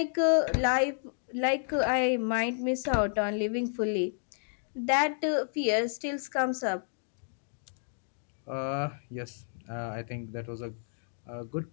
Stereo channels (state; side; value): silent; right; digital silence